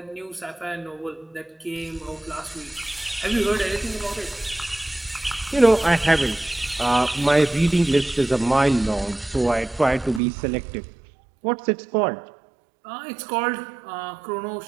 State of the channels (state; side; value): drops out; left; at 10.2 s